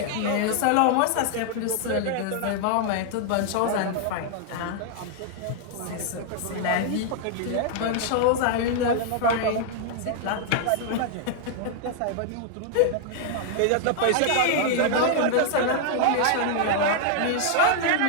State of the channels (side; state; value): both; different; correlation -0.01